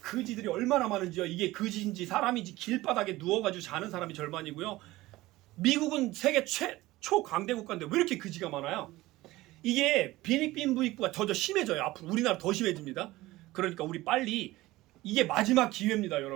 얼마나 많은지요. 이게 그지인지 사람인지 길바닥에 누워가지고 자는 사람이 절반이고요. 미국은 세계 최초 강대 국가인데 왜 이렇게 그지가 많아요? 이게 비닉빈 무입부가 더 심해져요. 앞으로 우리나라 더 심해집니다. 그러니까 우리 빨리, 이게 마지막 기회입니다,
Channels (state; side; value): quieter; left; 18.2 dB